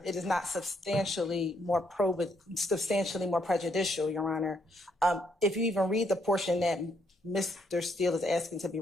it is not substantially more prejudicial, Your Honor. If you even read the portion that Mr. Steele is asking to be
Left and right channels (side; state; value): both; normal; correlation 0.73